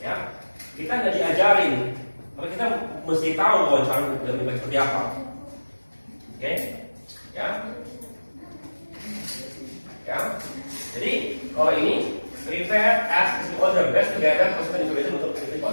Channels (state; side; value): inverted; both; correlation -1.00